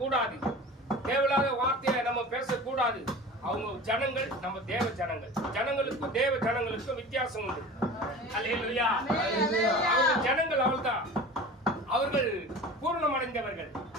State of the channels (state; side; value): normal; both; correlation 0.37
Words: தேவையில்லாத வார்த்தையை நம்ம பேசக்கூடாது. அவங்க ஜனங்கள், நம்ம தேவ ஜனங்கள். ஜனங்களுக்கும் தேவ ஜனங்களுக்கும் வித்தியாசம் உண்டு. அல்லேலூயா. அவங்க ஜனங்கள் அவள்தான், அவர்கள் பூர்ணம் அடைந்தவர்கள்,